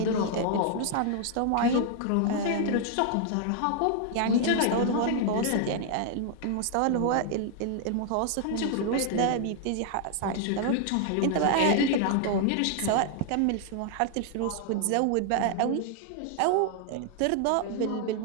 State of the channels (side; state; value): both; different; correlation 0.00